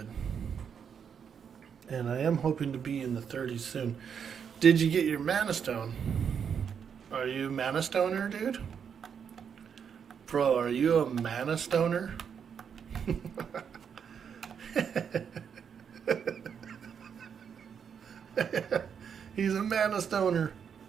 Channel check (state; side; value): quieter; left; 7.3 dB